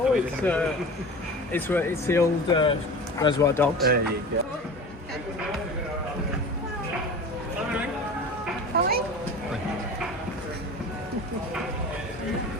it's the old Reservoir Dogs. There you go.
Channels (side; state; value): both; normal; correlation 0.35